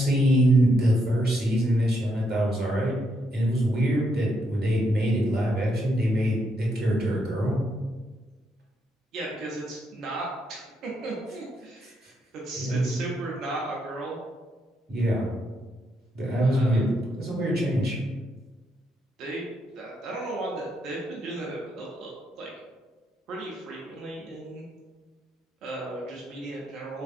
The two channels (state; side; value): normal; both; correlation 0.77